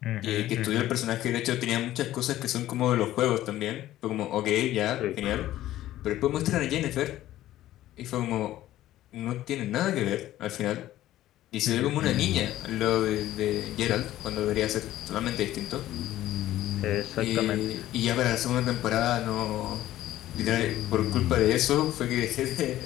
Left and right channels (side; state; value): right; quieter; 14.2 dB